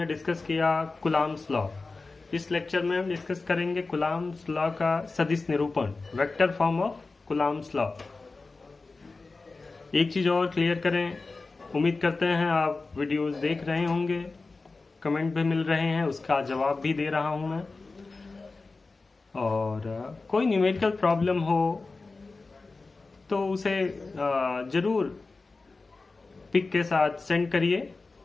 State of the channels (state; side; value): quieter; right; 3.7 dB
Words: discuss किया कुलाम्स लॉ। इस लेक्चर में हम डिस्कस करेंगे कुलाम्स लॉ का सदिश निरूपण, vector form of Coulomb's law. एक चीज़ और क्लियर करें, उम्मीद करते हैं आप वीडियोस देख रहे होंगे, कमेंट भी मिल रहे हैं, उसका जवाब भी दे रहा हूं मैं। और कोई न्यूमेरिकल प्रॉब्लम हो तो उसे ज़रूर पिक के साथ सेंड करिए,